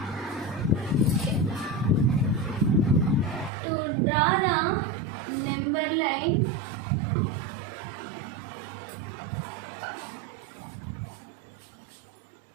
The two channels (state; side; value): drops out; left; at 3.5 s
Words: To draw the number line,